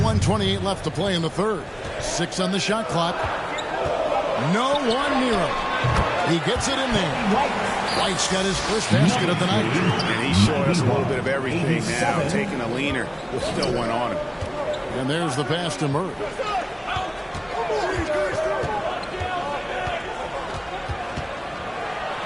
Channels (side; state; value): both; identical; correlation 1.00